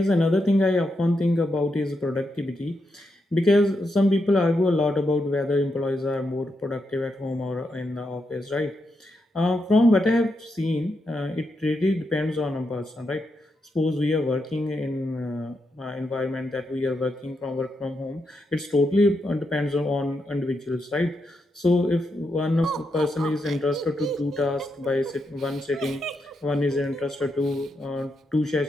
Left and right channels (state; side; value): normal; both; correlation 0.83